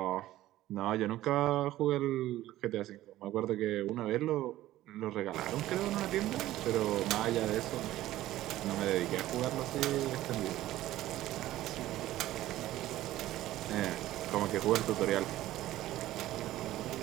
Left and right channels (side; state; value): left; quieter; 14.9 dB